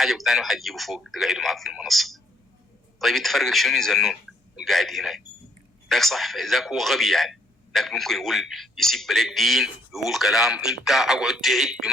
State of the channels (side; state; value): both; normal; correlation 0.67